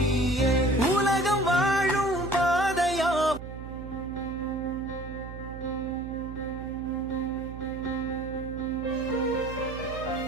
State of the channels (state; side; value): noise; right; hum, 11 dB below the sound